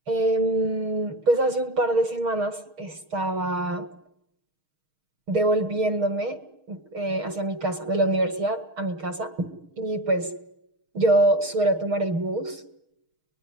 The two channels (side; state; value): left; late; 6.4 ms